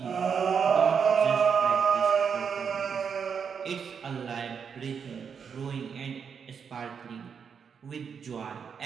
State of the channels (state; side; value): quieter; left; 6.7 dB